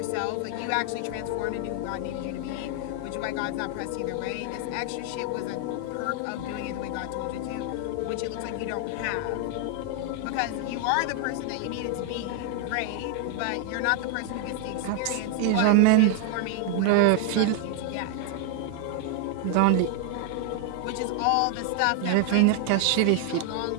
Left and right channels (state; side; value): different; both; correlation 0.00